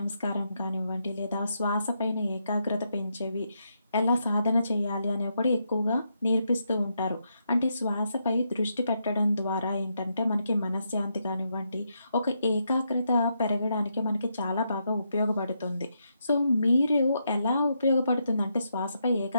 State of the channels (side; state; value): both; inverted; correlation -0.81